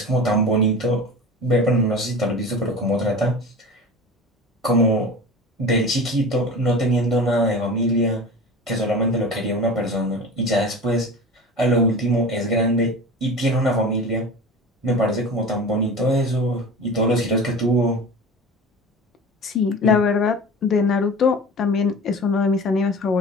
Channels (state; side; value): normal; both; correlation 0.34